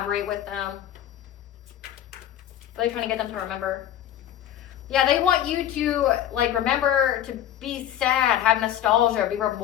with them. What are they trying to get them to remember? Yeah, they want you to like remember to be sad, have nostalgia, be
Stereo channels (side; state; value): right; quieter; 11.4 dB